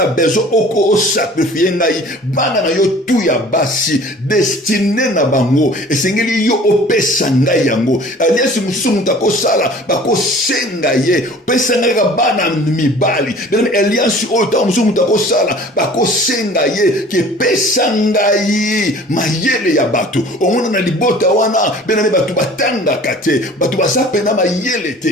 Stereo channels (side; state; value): both; normal; correlation 0.47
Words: bezo oko o sacrifier ngai bana na yo tu ya basi destiné na bango esengeli yo opesa ngai yango alliance musumu tako sala bako senga ye pesa ngai ka bana mibali bien alliance o ta musumu tako sala bako senga ye ke pesa ngai mayele ya bato omona na libota wana bien batu batanga kate batu basapena mayele